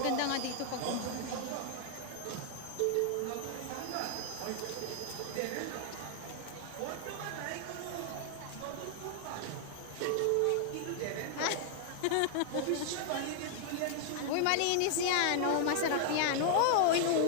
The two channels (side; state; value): both; different; correlation 0.00